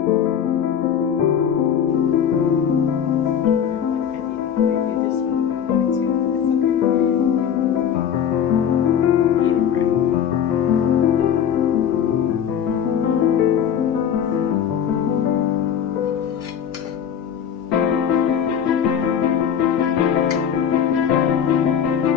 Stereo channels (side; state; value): right; quieter; 8.5 dB